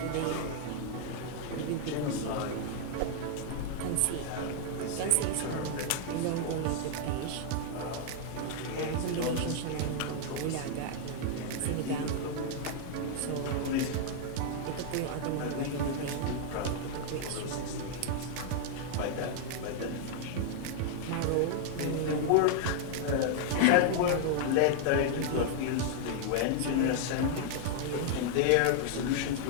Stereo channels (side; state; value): both; different; correlation 0.00